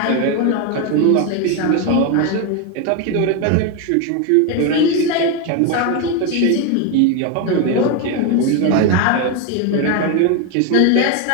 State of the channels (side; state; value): both; different; correlation 0.02